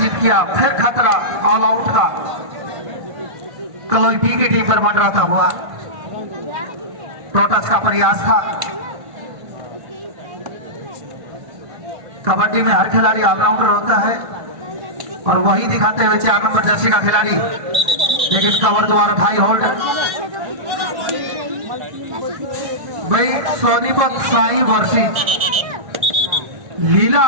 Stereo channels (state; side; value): late; left; 1.5 ms